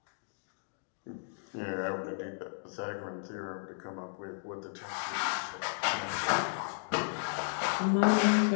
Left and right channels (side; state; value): right; silent; digital silence